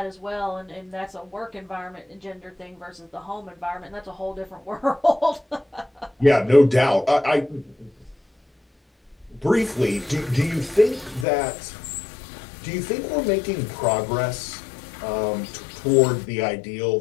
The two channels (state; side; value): drops out; right; at 11.2 s